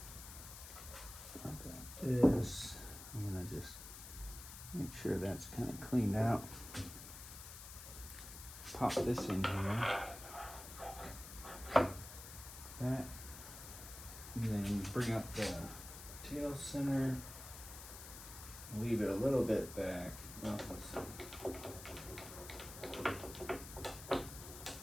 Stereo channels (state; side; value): noise; left; hiss, 12 dB below the sound